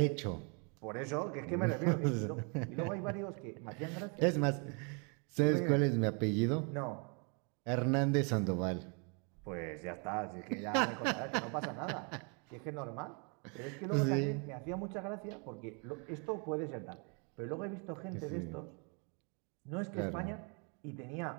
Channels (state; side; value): quieter; left; 35.7 dB